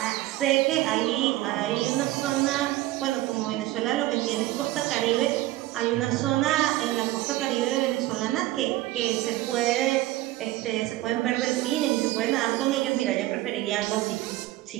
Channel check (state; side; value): quieter; left; 16.8 dB